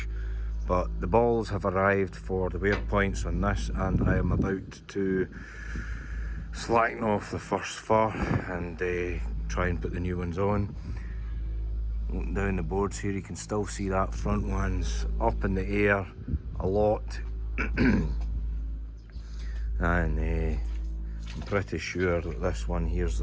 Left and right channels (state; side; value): identical; both; correlation 1.00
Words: but the balls have arrived for the wear points on this, and I am about to slacken off the first fur and try and put the new ones on. Looking down the boards here, you can still see that front one's up in the air a lot. And I'm pretty sure that this one here's